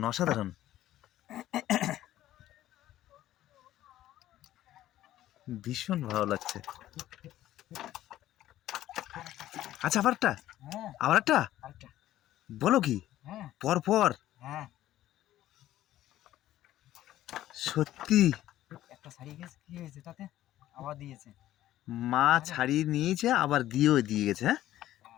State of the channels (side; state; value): right; quieter; 13.7 dB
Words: অসাধারণ। ভীষণ ভালো লাগছে। আচ্ছা, আবার একটা? হ্যাঁ, আবার একটা? আরেকটা। বলো কি? হ্যাঁ, পর পর? হ্যাঁ। সত্যি একটা ছাড়িয়ে গেছে, কি হয়েছে তাতে? আবার দিয়েছে। মা ছাড়িয়ে নিয়েছে, আবার দিয়েও দিয়ে গেছে। হ্যাঁ,